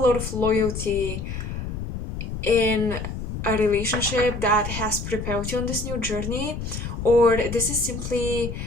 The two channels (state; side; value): noise; left; rumble, 6 dB below the sound